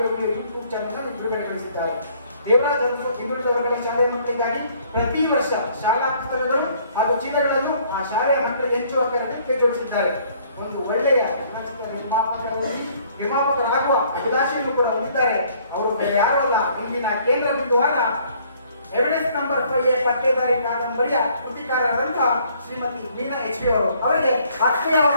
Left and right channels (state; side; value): inverted; both; correlation -0.61